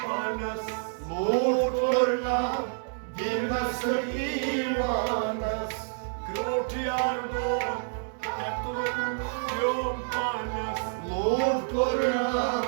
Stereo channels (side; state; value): left; silent; digital silence